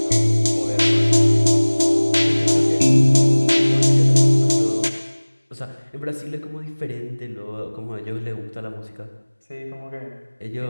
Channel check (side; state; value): both; inverted; correlation -1.00